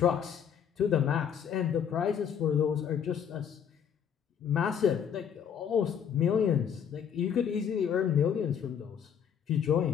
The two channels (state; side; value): quieter; right; 8.1 dB